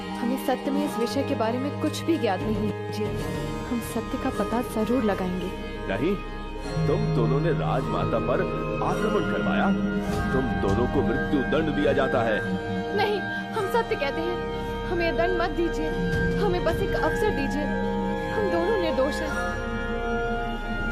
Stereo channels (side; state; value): both; identical; correlation 1.00